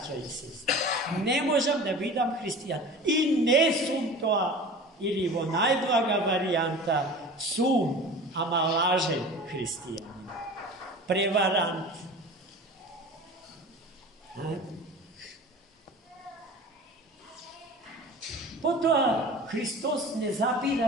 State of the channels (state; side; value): normal; both; correlation 0.38